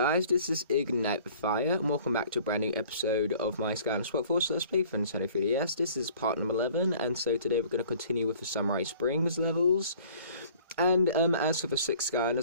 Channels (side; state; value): both; inverted; correlation -0.51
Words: this is Ignite the Fire, and welcome back to a brand new episode of my Skylanders Workforce Let's Play for Nintendo 3DS. This is part number 11, and so today we're going to continue with the Samurai Springs levels. And as for the 6